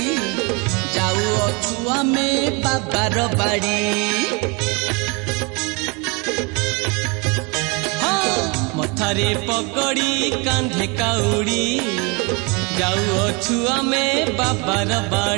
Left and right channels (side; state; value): left; quieter; 30.0 dB